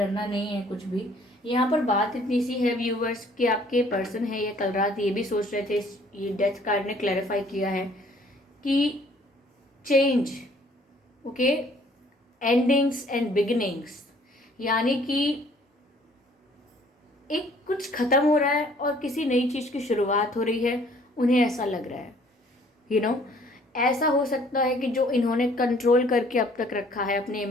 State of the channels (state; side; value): normal; both; correlation 0.58